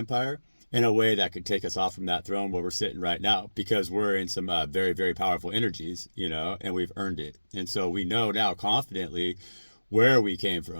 in a way that could take us off from that throne where we're sitting right now, because we're in some very, very powerful energies, and we've earned it. And so we know now confidently where we came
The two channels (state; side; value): inverted; both; correlation -1.00